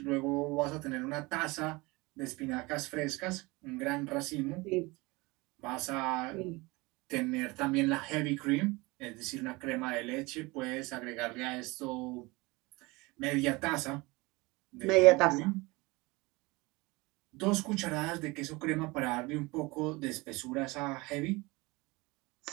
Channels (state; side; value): quieter; left; 23.8 dB